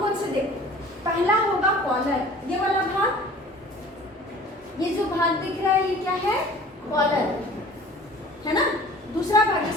कौन से देखो? पहला होगा कॉलर, ये वाला भाग, ये जो भाग दिख रहा है ये क्या है? कॉलर है ना। दूसरा भाग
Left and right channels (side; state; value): both; normal; correlation 0.46